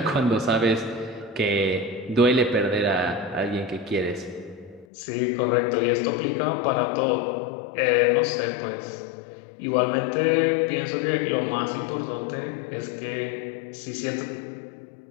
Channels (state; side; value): drops out; right; at 4.9 s